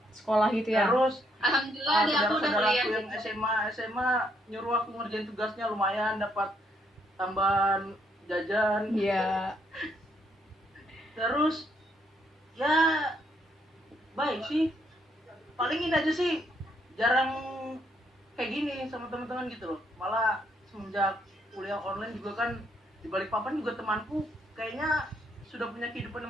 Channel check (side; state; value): both; normal; correlation 0.73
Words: Sekolah gitu ya. Alhamdulillah Terus deh aku udah saudara-saudara kuliah. aku yang SMA nyuruh aku ngerjain tugasnya, lumayan dapat tambahan jajan. Iya. Terus ya baik sih, paling ini aja sih, jarang kayak gini sama teman-teman gitu loh. Malah semenjak kuliah online juga kan di Balikpapan juga temanku kayaknya sudah punya